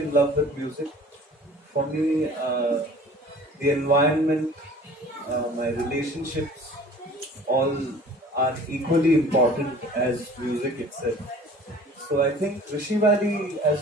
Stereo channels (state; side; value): normal; both; correlation 0.47